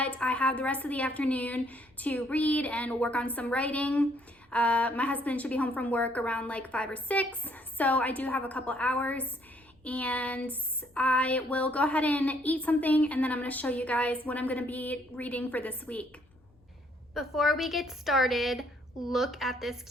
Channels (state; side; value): normal; both; correlation 0.66